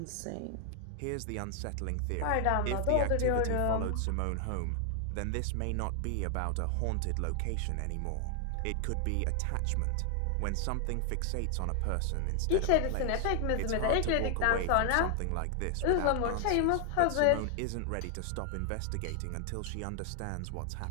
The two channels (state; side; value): different; both; correlation 0.00